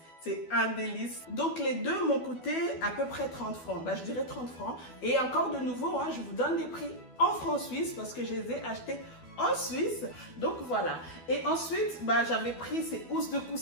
C'est un délice. Donc les deux m'ont coûté à peu près 30 francs. Bah, je dirais 30 francs. Et encore de nouveau, hein, je vous donne les prix en francs suisses parce que je les ai achetés en Suisse. Donc voilà. Et ensuite, bah, j'avais pris ces housses de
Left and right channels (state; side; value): late; right; 12 ms